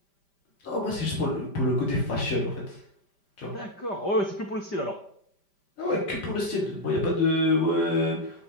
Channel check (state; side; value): late; right; 5.1 ms